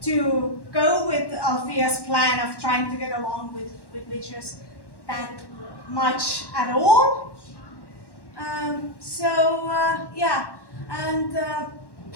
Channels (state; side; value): late; right; 1.1 ms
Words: to go with Althea's plan of trying to get along with witches that much at all.